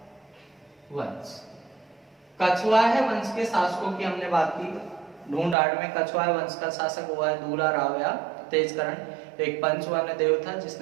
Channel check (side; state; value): left; drops out; at 5.6 s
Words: वंश, कछवाहा वंश के शासकों की हमने बात की। ढूंढाड़ में कछवाहा वंश का शासक हुआ है दूला राव या तेजकरण। एक पंचवर्ण देव था